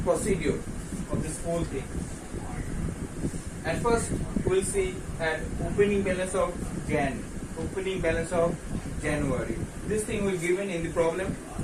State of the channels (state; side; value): identical; both; correlation 1.00